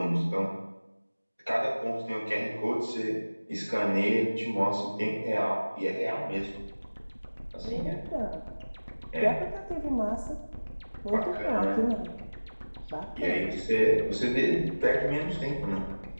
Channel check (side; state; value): both; inverted; correlation -1.00